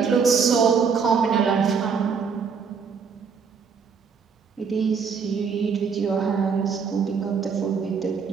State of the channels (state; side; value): quieter; left; 6.0 dB